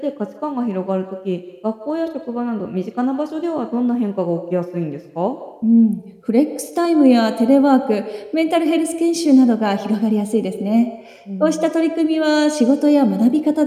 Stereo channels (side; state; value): both; identical; correlation 1.00